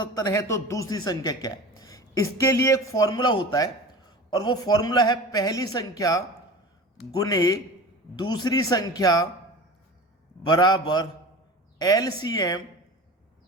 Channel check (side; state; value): both; normal; correlation 0.34